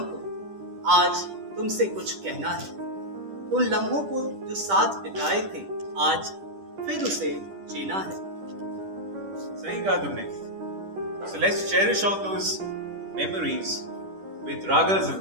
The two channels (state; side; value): late; left; 10 ms